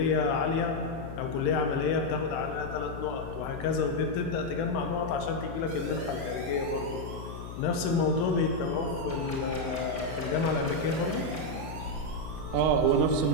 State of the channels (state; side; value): noise; left; hum, 10 dB below the sound